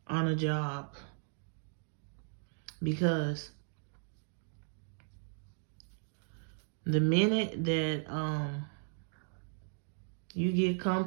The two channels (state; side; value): silent; left; 54 dB below the other